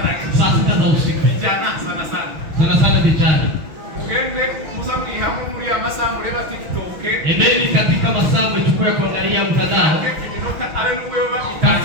6 za usiku. Vijana sana vijana. Ugende muza mwihamwe muri amasaha mureba TikTok. Endeni katika masaa mchukua kuangalia mtandao.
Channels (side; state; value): left; late; 6.1 ms